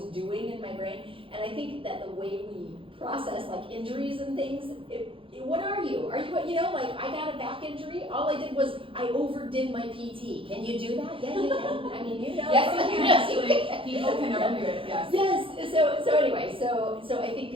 doing in my brain. And I think that the way we process like injuries and things, what are you? Are you, you know, like I got a back injury. All I did was I overdid my PT. Can you do that? Yeah, you can. I mean, you know. Yes, you can actually. People can overdo it. Yes. Yes. So anyway, so I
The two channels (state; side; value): late; left; 0.26 ms